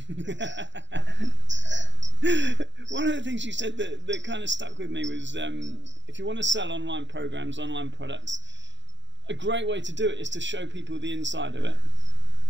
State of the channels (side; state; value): left; late; 0.53 ms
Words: One of the things you said that kind of stuck with me was if you want to sell online programs, online products, a great way to do it is to show people the inside of it.